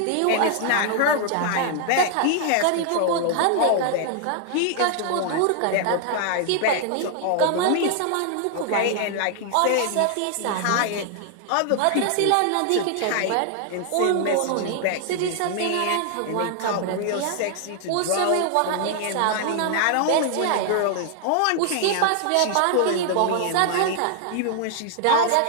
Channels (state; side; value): different; both; correlation 0.00